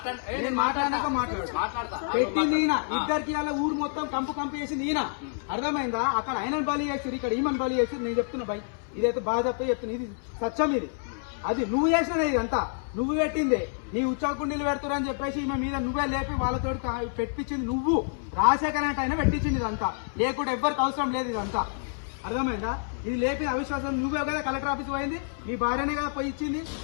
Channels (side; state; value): right; silent; 59 dB below the other